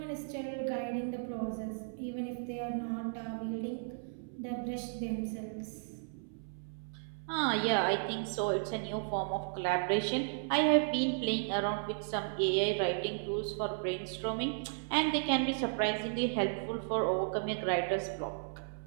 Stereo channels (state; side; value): silent; left; 55 dB below the other